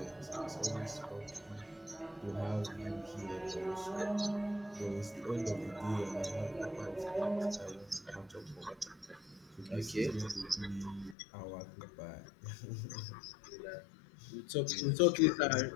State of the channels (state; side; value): drops out; right; at 11.2 s